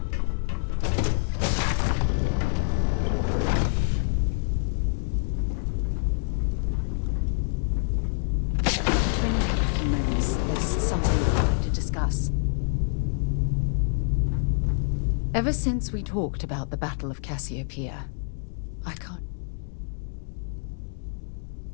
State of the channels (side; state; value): right; silent; digital silence